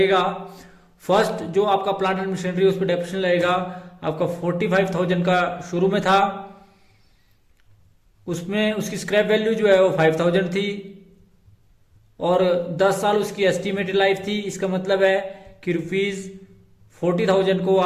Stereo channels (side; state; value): both; identical; correlation 1.00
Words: फर्स्ट जो आपका प्लांट एंड मशीनरी उस पर डेप्रिसिएशन लगेगा आपका 45,000 का शुरू में था। उसमें उसकी स्क्रैप वैल्यू जो है वो 5,000 थी और 10 साल उसकी एस्टिमेटेड लाइफ थी। इसका मतलब है कि ₹40,000 को